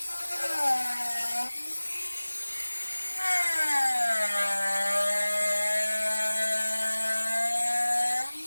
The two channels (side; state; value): both; inverted; correlation -1.00